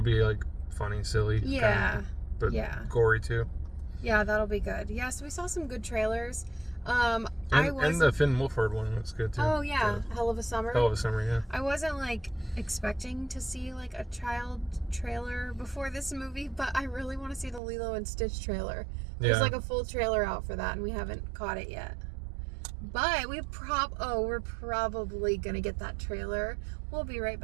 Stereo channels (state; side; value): drops out; left; at 17.6 s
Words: be like funny, silly. Yeah. Kinda, but yeah. Gory too. Yeah, that'll be good. Yeah, so we saw some good trailers. And the Finn Wolfhard one looks good too. Oh yeah, Hell of a Summer. Hell of a Summer, yeah. I wasn't like expecting to see like a child trailer before this movie, but I really want to see the Lilo and Stitch trailer. There's like a full trailer out for that, and we haven't caught it yet. But we're probably gonna get that trailer. We'll be right